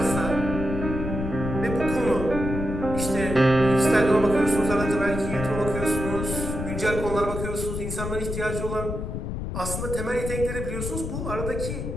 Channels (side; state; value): left; noise; rumble, 5 dB below the sound